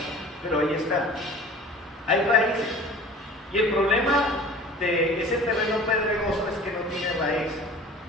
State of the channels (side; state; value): both; normal; correlation 0.43